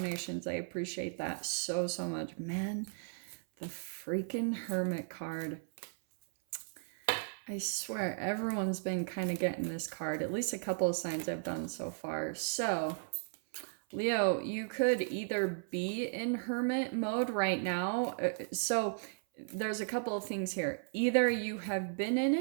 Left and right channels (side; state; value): left; silent; 54 dB below the other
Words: I appreciate that so much. Man, the freaking Hermit card. I swear, everyone's been kind of getting this card. At least a couple of signs I've done so far. So, Leo, you could either be in hermit mode right now. So there's a couple of things here. Either you have been in